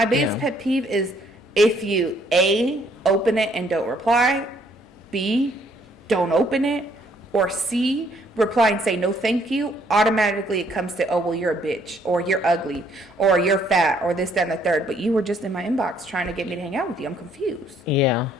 biggest pet peeve is if you, A, open it and don't reply, B, don't open it, or C, reply and say no thank you, automatically it comes to, oh, well, you're a bitch, or you're ugly, or you're fat, or this, that, and the third. But you were just in my inbox trying to get me to hang out with you. I'm confused. Yeah.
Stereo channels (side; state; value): both; normal; correlation 0.66